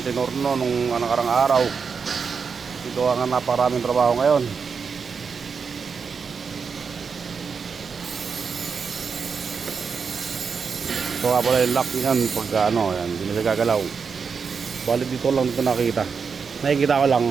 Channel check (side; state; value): left; quieter; 5.7 dB